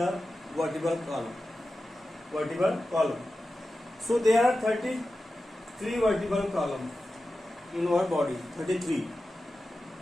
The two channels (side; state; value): both; normal; correlation 0.93